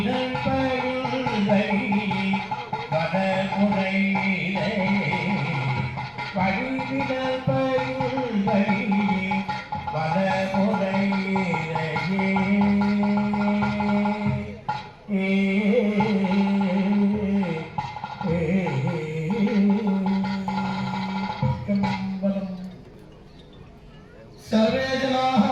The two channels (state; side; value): identical; both; correlation 1.00